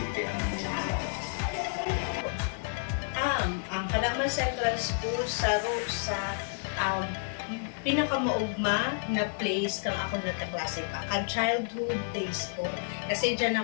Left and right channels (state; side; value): silent; right; digital silence